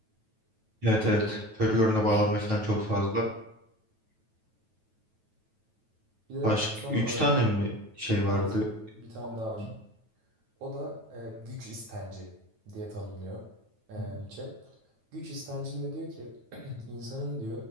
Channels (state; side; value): late; left; 9.2 ms